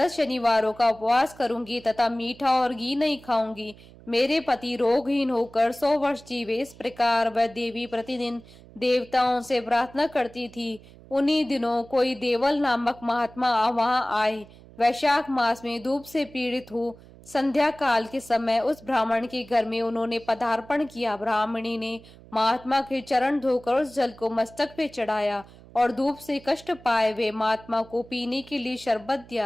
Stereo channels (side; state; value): right; noise; hum, 22 dB below the sound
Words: शनिवारों का उपवास करूंगी तथा मीठा और घी नहीं खाऊंगी। मेरे पति रोगहीन होकर 100 वर्ष जीवे। इस प्रकार वह देवी प्रतिदिन देवताओं से प्रार्थना करती थी। उन्हीं दिनों कोई देवल नामक महात्मा वहां आए। वैशाख मास में धूप से पीड़ित हो संध्या काल के समय उस ब्राह्मण के घर में उन्होंने पदार्पण किया। ब्राह्मणी ने महात्मा के चरण धोकर उस जल को मस्तक पे चढ़ाया और धूप से कष्ट पाए हुए महात्मा को पीने के लिए शरबत